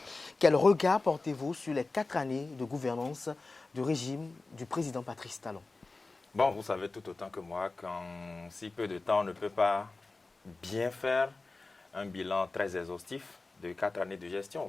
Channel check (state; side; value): quieter; right; 3.5 dB